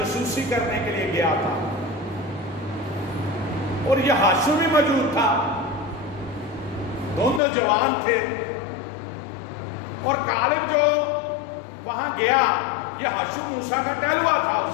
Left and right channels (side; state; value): right; drops out; at 7.4 s